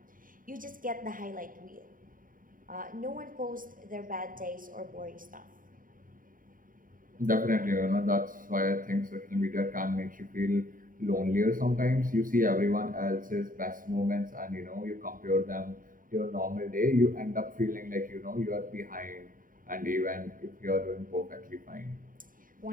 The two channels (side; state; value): left; late; 0.40 ms